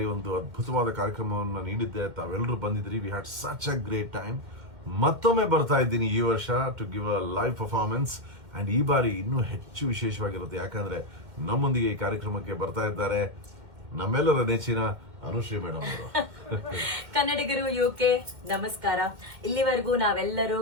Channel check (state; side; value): late; left; 2.2 ms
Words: ಒಂದು ಅದ್ಭುತವಾದ ಕಾರ್ಯಕ್ರಮವನ್ನು ನೀಡಿದ್ದೆ. ತಾವೆಲ್ಲರೂ ಬಂದಿದ್ರಿ. We had such a great time. ಮತ್ತೊಮ್ಮೆ ಬರ್ತಾ ಇದ್ದೀನಿ ಈ ವರ್ಷ to give a live performance. And ಈ ಬಾರಿ ಇನ್ನೂ ಹೆಚ್ಚು ವಿಶೇಷವಾಗಿರುತ್ತೆ, ಯಾಕಂದ್ರೆ ನಮ್ಮೊಂದಿಗೆ ಈ ಕಾರ್ಯಕ್ರಮಕ್ಕೆ ಬರ್ತಾ ಇದ್ದಾರೆ ನಮ್ಮೆಲ್ಲರ ನೆಚ್ಚಿನ ಅನುಶ್ರೀ ಮೇಡಮ್ ಅವರು. ಕನ್ನಡಿಗರು UK ನಮಸ್ಕಾರ. ಇಲ್ಲಿವರೆಗೂ ನಾವೆಲ್ಲರೂ